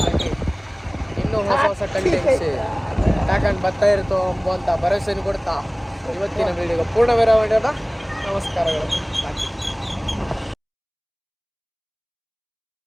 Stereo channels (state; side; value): identical; both; correlation 1.00